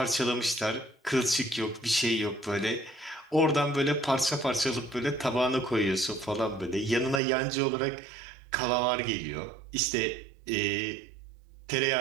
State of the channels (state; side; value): drops out; left; at 7.2 s